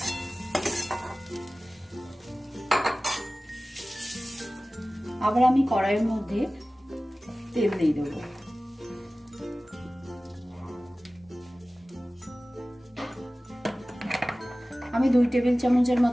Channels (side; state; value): both; normal; correlation 0.97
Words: আবার আমি কড়াইয়ের মধ্যে তেল দিয়ে দেবো। আমি 2 টেবিল চামচের